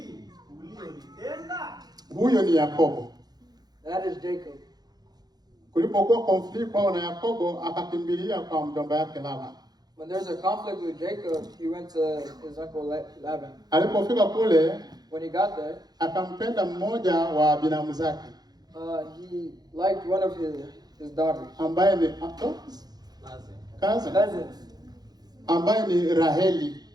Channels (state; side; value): late; left; 0.19 ms